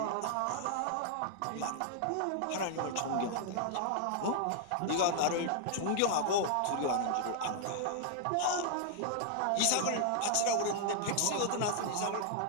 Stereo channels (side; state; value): both; different; correlation -0.01